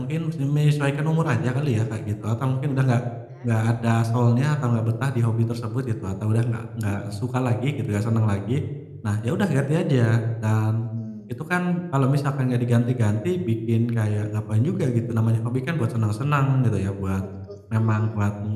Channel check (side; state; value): both; identical; correlation 1.00